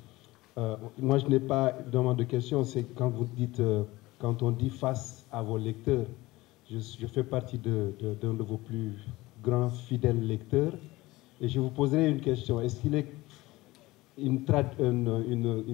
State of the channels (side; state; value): right; quieter; 19.6 dB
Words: Moi, je n'ai pas vraiment de questions. C'est quand vous dites, quand on dit face à vos lecteurs, je fais partie d'un de vos plus grands fidèles lecteurs. Et je vous poserai une question. Est-ce qu'il est